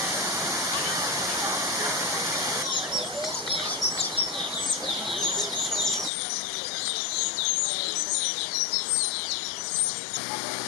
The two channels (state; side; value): drops out; right; at 6.1 s